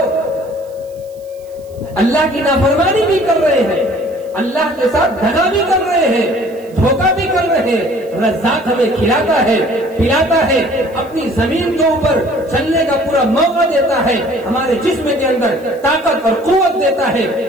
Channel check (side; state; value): right; noise; hiss, 28 dB below the sound